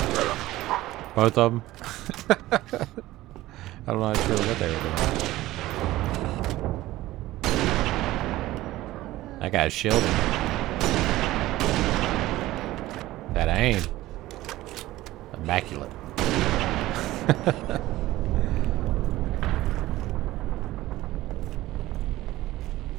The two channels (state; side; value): quieter; left; 16.7 dB